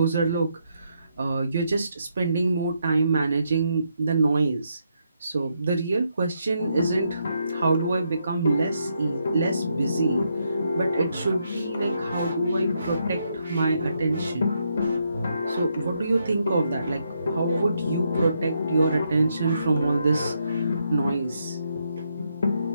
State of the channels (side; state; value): both; inverted; correlation -0.78